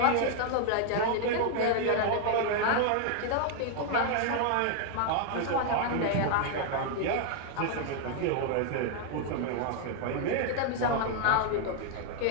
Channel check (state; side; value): different; both; correlation 0.00